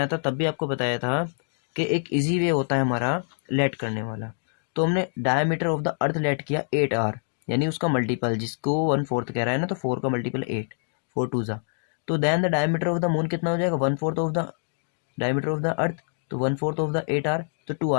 था, तब भी आपको बताया था कि एक इजी वे होता है हमारा लेट करने वाला। तो हमने diameter of the earth let किया 8r, यानी उसका मल्टीपल, जिसको 1/4 कह रहा है ना, तो 4 का मल्टीपल 8, 4 2 ज़ा। तो then the diameter of the moon कितना हो जाएगा, 1/4 of the diameter of the earth, तो 1/4 ऑफ द 8 आर, तो 2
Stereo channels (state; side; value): silent; right; digital silence